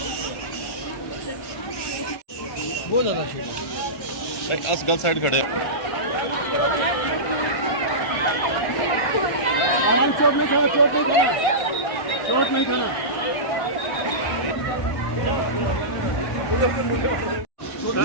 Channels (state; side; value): late; right; 1.5 ms